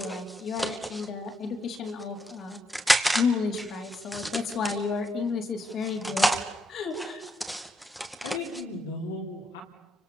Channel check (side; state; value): both; normal; correlation 0.78